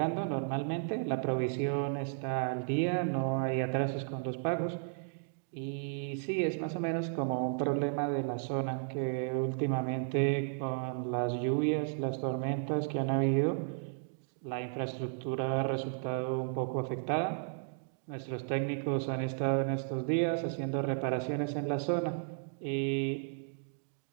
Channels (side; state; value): left; silent; digital silence